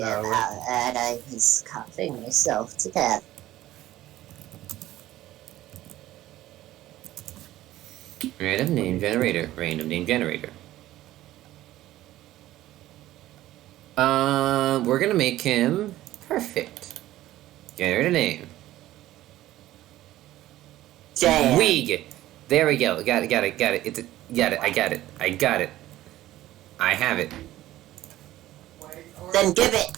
about that. I was coughing myself to death. Random name generator. Random name generator. We're gonna make him perfect. Generate a name. Damn. Weeg. There we go. Got it. Got it. Got it. Got it. I got it. I got it. I have it. Then give it.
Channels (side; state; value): left; quieter; 15.0 dB